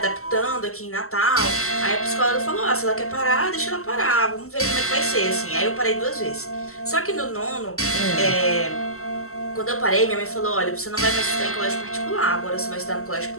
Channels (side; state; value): right; late; 0.63 ms